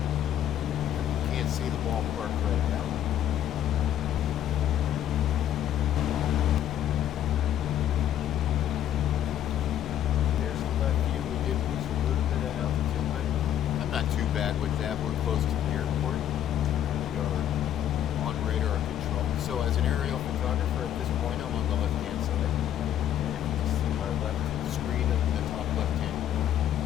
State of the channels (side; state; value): right; quieter; 10.7 dB